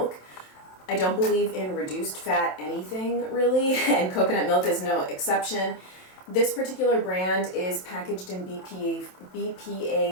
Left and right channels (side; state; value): right; late; 27 ms